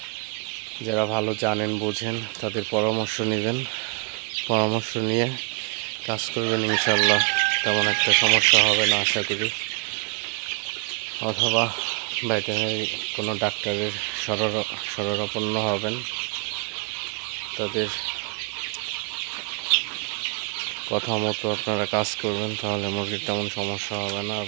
যারা ভালো জানেন বোঝেন তাদের পরামর্শ নেবেন, পরামর্শ নিয়ে কাজ করবেন। ইনশাল্লাহ তেমন একটা সমস্যা হবে না আশা করি। অথবা ভেটেরিনারি কোনো ডাক্তারের শরণাপন্ন হবেন, তাদের কথা মতো আপনারা কাজ করবেন, তাহলে মুরগির তেমন সমস্যা হবে না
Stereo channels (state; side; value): quieter; left; 30.7 dB